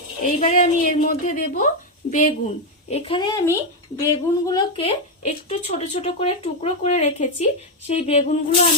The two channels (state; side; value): normal; both; correlation 0.04